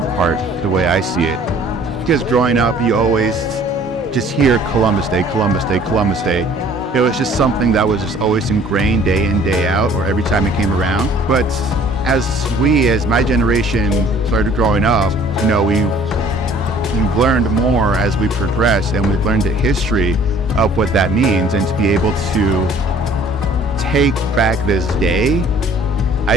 part, the way I see it. Because growing up, you always just hear Columbus Day, Columbus Day, Columbus Day. It was just something that was just always ingrained day in, day out, or every time it came around. But as my generation started growing up, we've learned more as we progressed, and we've learned the history of what that means. And to be able to take back this day,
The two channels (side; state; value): both; normal; correlation 0.54